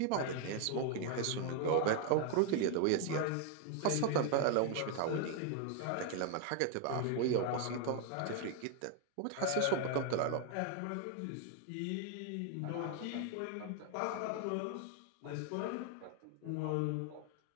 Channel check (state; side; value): different; both; correlation 0.00